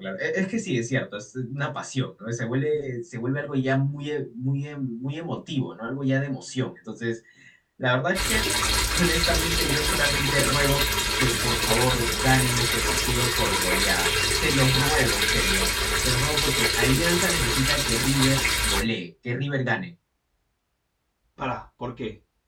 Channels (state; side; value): identical; both; correlation 1.00